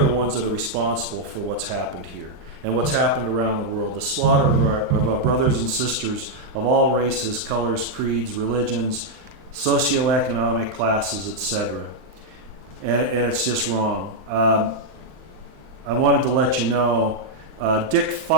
the ones that are responsible for what's happened here and what's happened around the world. The slaughter of our brothers and sisters of all races, colors, creeds, religions, socioeconomic classes, etc. And it's just wrong. I wanted to let you know, Dick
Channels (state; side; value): late; left; 39 ms